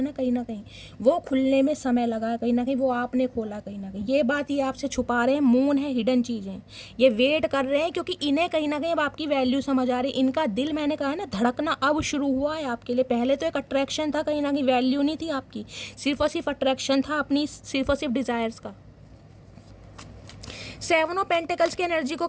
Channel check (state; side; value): identical; both; correlation 1.00